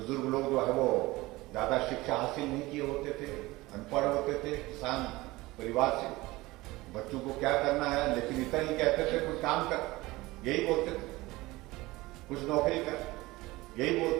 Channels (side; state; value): left; quieter; 20.1 dB